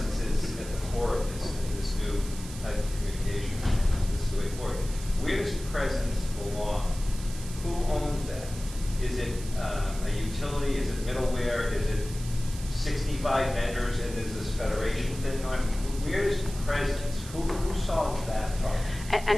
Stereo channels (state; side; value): noise; right; hiss, 14 dB below the sound